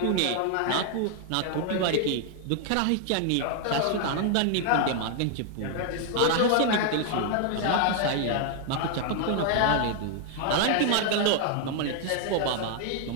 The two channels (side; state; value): both; different; correlation 0.00